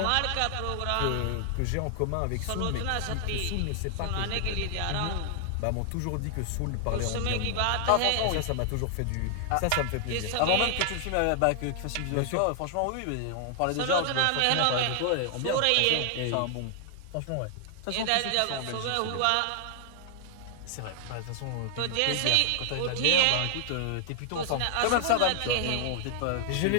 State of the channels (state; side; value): different; both; correlation 0.00